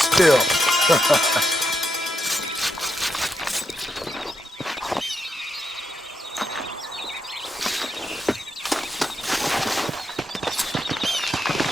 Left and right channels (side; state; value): both; normal; correlation 0.83